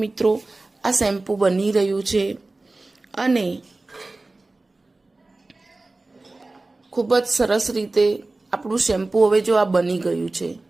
આ શેમ્પૂ બની રહ્યું છે અને ખૂબ જ સરસ રીતે આપણું શેમ્પૂ હવે જો આ બની ગયું છે।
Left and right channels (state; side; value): quieter; left; 3.2 dB